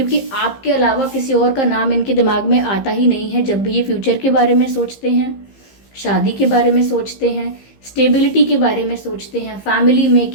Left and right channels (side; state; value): right; late; 15 ms